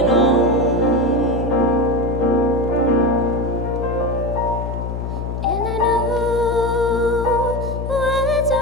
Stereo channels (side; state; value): left; noise; hum, 5 dB below the sound